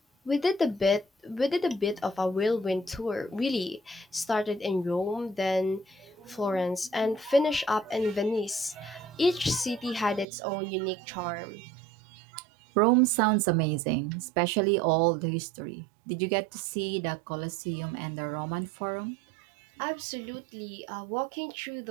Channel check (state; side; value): drops out; left; at 10.2 s